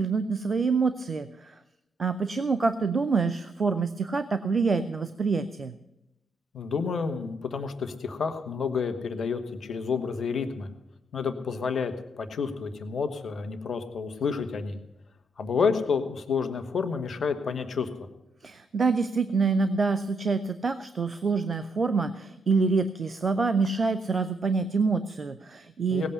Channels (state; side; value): normal; both; correlation 0.74